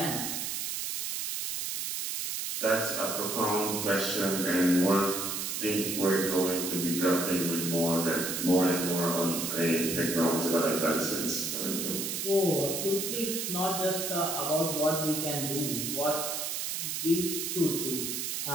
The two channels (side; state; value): right; noise; hiss, 3 dB below the sound